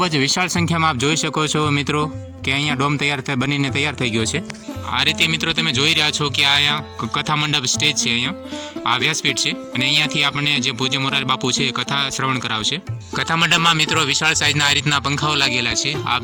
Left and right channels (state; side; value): identical; both; correlation 1.00